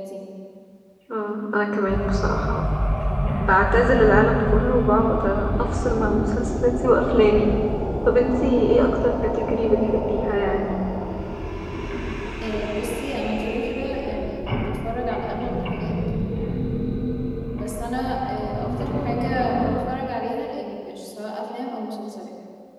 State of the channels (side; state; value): both; identical; correlation 1.00